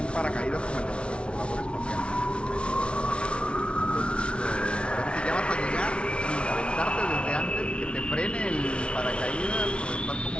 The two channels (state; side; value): late; right; 0.059 ms